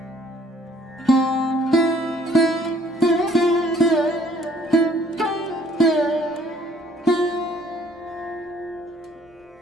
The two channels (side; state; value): both; normal; correlation 0.59